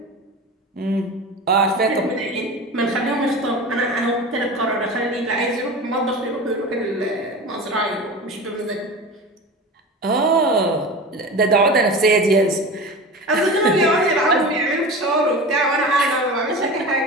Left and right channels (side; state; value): both; normal; correlation 0.31